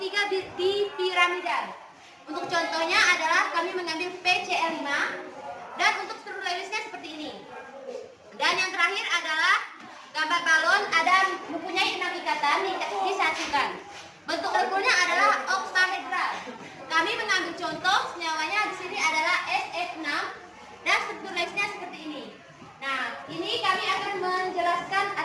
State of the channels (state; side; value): identical; both; correlation 1.00